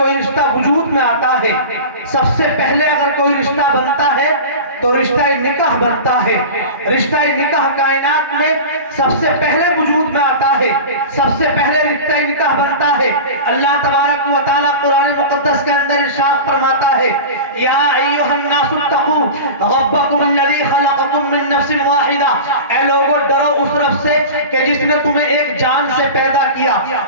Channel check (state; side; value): inverted; both; correlation -0.31